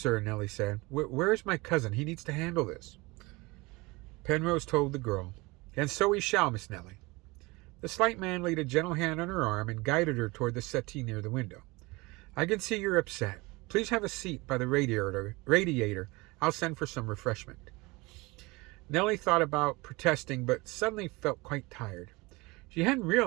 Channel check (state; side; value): quieter; left; 23.8 dB